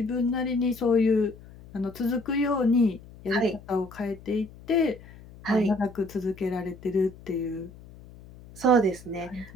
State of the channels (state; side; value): noise; left; hum, 20 dB below the sound